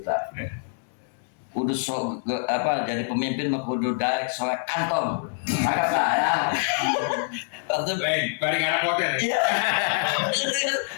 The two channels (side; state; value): right; silent; digital silence